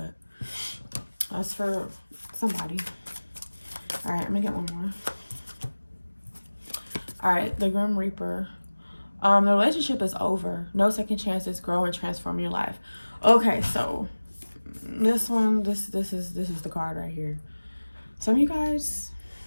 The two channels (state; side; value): inverted; both; correlation -1.00